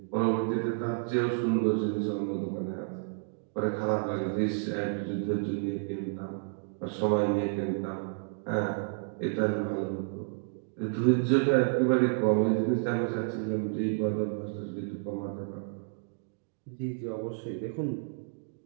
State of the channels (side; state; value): left; silent; digital silence